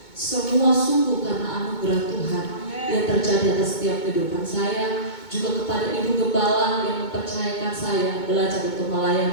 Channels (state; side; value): late; right; 2.2 ms